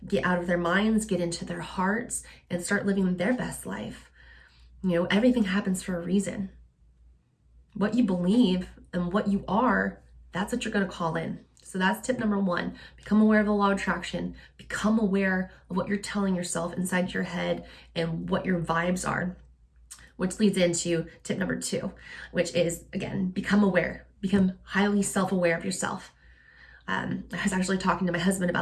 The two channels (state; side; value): identical; both; correlation 1.00